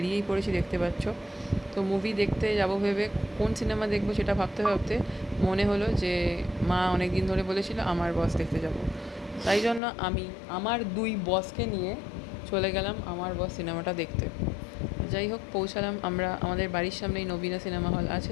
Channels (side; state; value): right; drops out; at 9.8 s